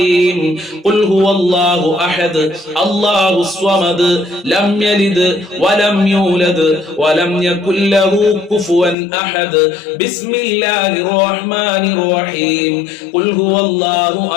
ഖുൽ ഹുവല്ലാഹു അഹദ് അല്ലാഹുസ് സ്വമദ് ലം യലിദ് വലം യൂലദ് വലം യകുൽ ലഹു കുഫുവൻ അഹദ്. ബിസ്മില്ലാഹിർ റഹ്മാനിർ റഹീം. ഖുൽ ഹുവല്ലാഹു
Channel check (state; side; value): drops out; right; at 9.0 s